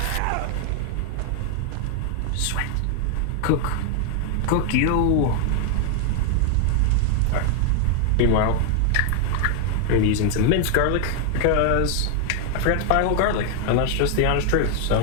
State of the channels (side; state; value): both; different; correlation 0.00